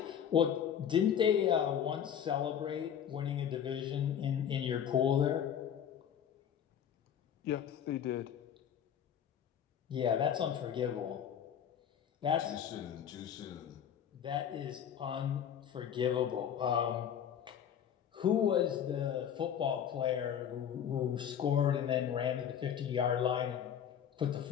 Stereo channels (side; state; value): right; quieter; 8.9 dB